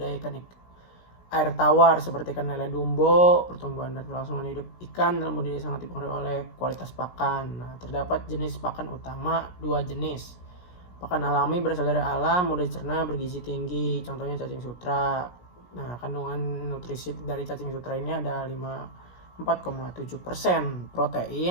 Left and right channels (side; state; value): right; late; 17 ms